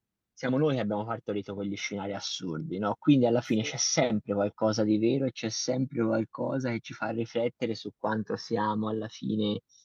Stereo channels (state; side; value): identical; both; correlation 1.00